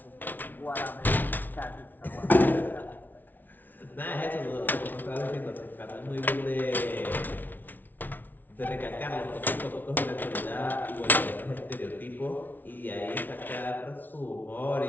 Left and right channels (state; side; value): late; right; 0.085 ms